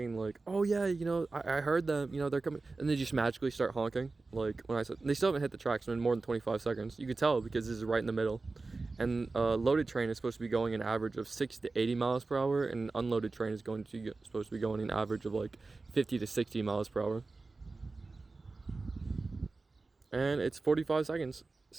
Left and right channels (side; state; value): left; quieter; 3.7 dB